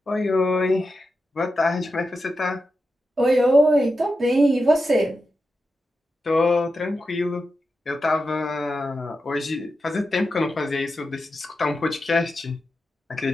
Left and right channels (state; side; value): normal; both; correlation 0.89